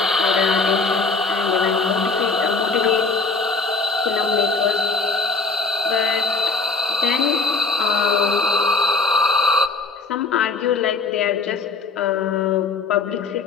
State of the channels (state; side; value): quieter; right; 4.1 dB